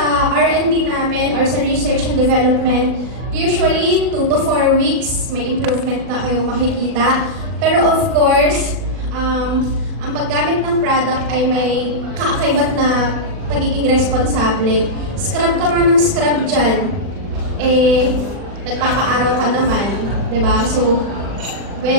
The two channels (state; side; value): late; left; 40 ms